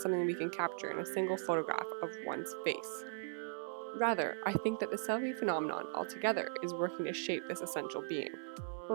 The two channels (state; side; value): silent; left; 52 dB below the other